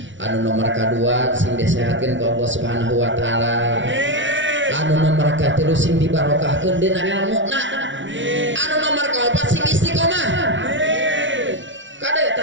Anu nomor kadua sing disehatkeun ku Allah Subhanahu wa taala. Anu nomor katilu sing dibarokahkeun dina ilmuna. Anu nomor kaopat sing istiqomah. Kade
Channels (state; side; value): late; left; 0.55 ms